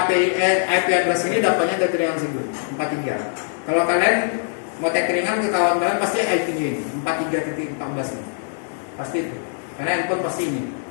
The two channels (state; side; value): silent; right; digital silence